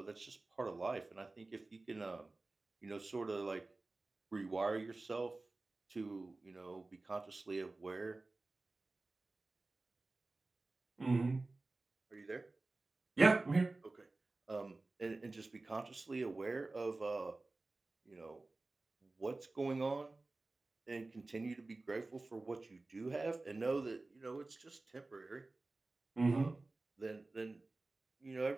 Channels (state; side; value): quieter; left; 3.2 dB